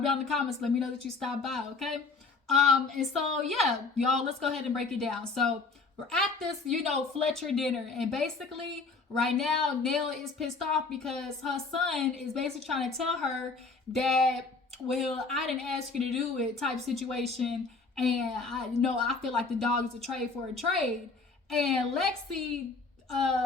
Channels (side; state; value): right; quieter; 4.1 dB